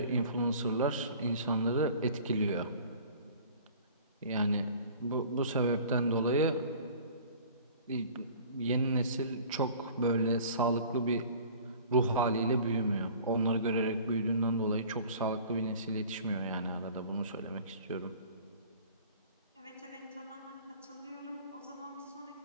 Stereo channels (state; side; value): inverted; both; correlation -0.47